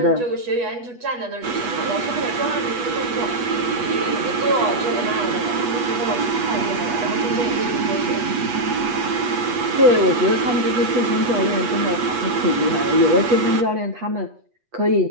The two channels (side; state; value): left; late; 8.2 ms